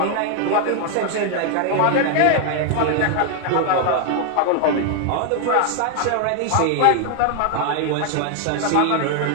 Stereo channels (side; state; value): both; different; correlation 0.00